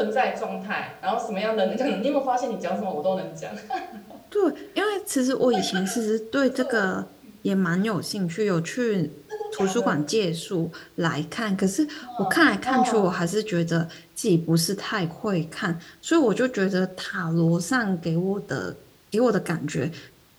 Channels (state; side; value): identical; both; correlation 1.00